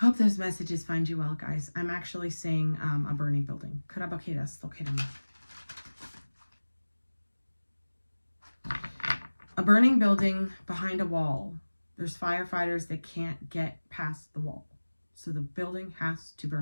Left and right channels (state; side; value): inverted; both; correlation -1.00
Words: those messages find you well, guys. I'm actually seeing a burning building. A burning building behind a wall. There's firefighters that can't get past the wall. So the building has to